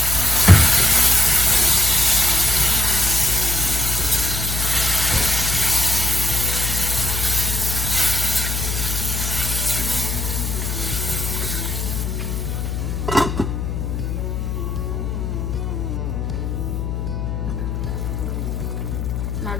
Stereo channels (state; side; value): noise; left; hum, 2 dB below the sound